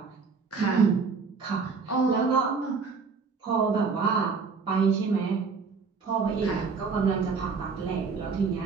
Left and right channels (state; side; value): quieter; left; 5.0 dB